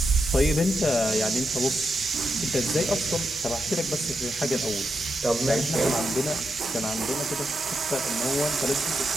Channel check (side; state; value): both; normal; correlation 0.85